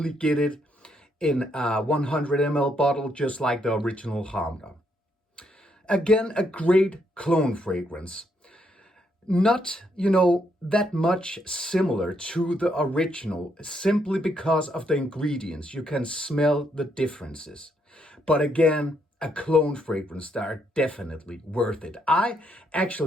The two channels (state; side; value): normal; both; correlation 0.75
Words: get it in a 100 ml bottle, just like the original Khamrah. Again, a great clone fragrance. Not, that much similar to the original, simply because of the ingredients. You can smell the differences. But again, a clone fragrance that are definitely worth it. I